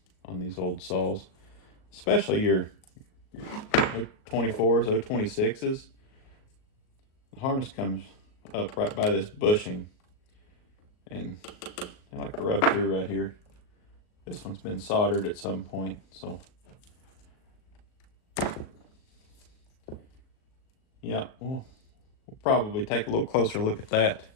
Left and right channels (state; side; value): late; right; 38 ms